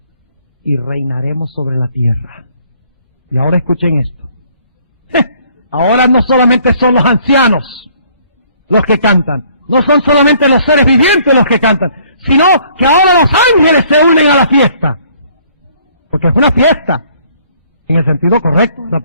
y reinaremos sobre la tierra. Y ahora escuchen esto. Ahora no solamente son los ancianos los que cantan, no son solamente los seres vivientes los que cantan, sino que ahora los ángeles se unen a la fiesta. Porque es una fiesta. En el sentido correcto de la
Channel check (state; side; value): inverted; both; correlation -0.61